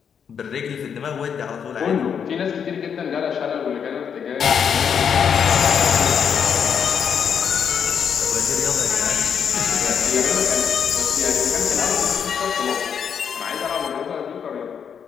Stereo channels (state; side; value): quieter; right; 7.4 dB